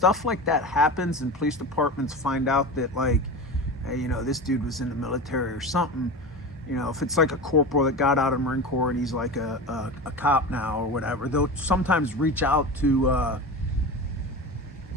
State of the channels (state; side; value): normal; both; correlation 0.28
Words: like that happens and police departments find out that, like, hey, this dude was in the military or something, if it's like a corporal that got out of the Marine Corps and he's like a cop now or whatever, they'll sometimes reach out to